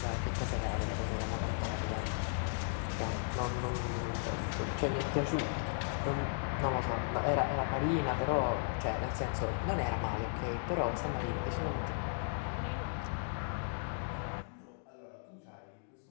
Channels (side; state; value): right; silent; digital silence